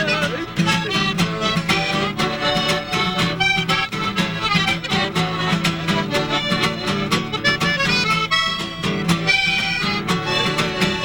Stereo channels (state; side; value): identical; both; correlation 1.00